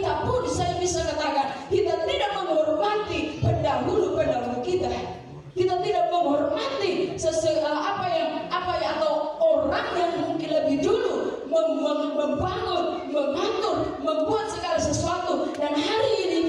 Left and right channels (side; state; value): both; identical; correlation 1.00